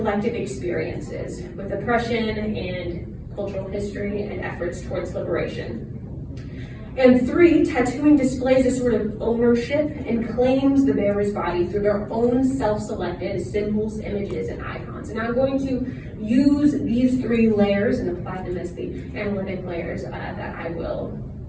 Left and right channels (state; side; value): identical; both; correlation 1.00